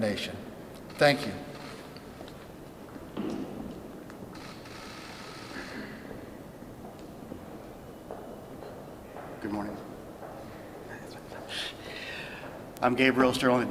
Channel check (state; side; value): identical; both; correlation 1.00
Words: Thank you. Good morning. I'm Gabriel Sterling, the